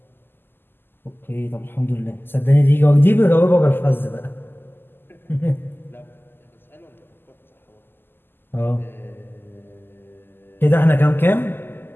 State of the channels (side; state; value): right; late; 0.098 ms